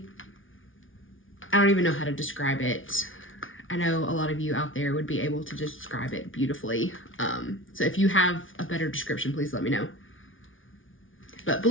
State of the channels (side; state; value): right; late; 0.57 ms